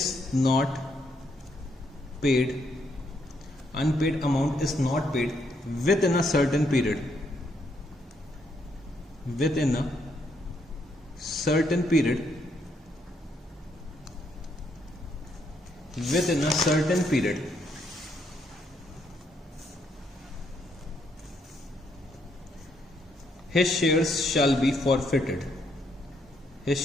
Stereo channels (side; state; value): both; normal; correlation 0.74